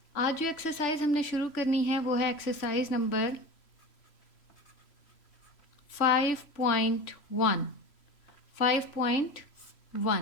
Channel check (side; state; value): right; late; 3.0 ms